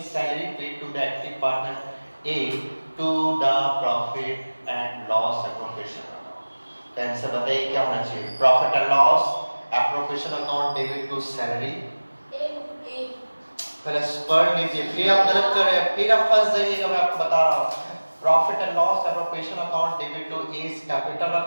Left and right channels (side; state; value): both; inverted; correlation -1.00